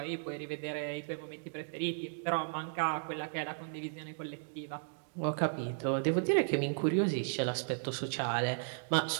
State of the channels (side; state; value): left; silent; digital silence